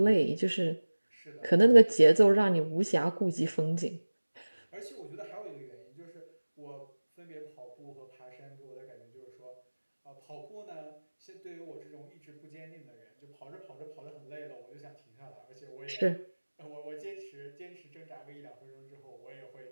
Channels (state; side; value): inverted; both; correlation -1.00